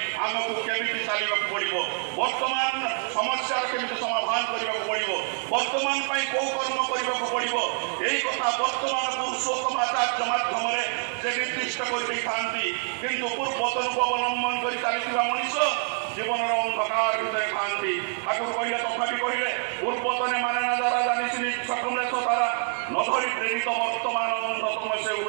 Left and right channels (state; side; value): silent; left; 55 dB below the other